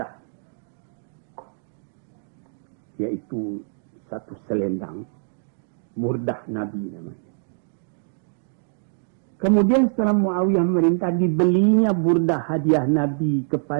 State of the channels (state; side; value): silent; left; digital silence